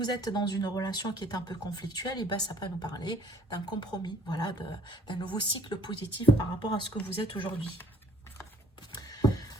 êtes dans une relation qui est un peu conflictuelle, et ben ça peut nous parler d'un compromis, voilà, d'un nouveau cycle positif par rapport à ce que vous êtes aujourd'hui.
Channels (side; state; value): both; normal; correlation 0.56